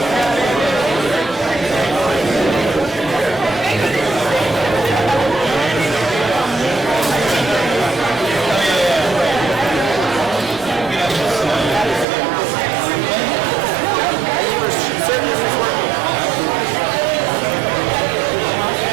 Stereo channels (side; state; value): left; drops out; at 12.1 s